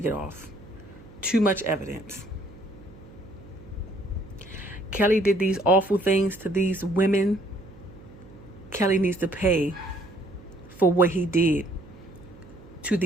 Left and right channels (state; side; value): noise; right; hum, 20 dB below the sound